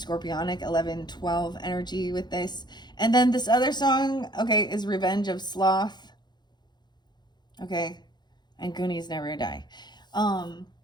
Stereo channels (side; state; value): right; late; 0.21 ms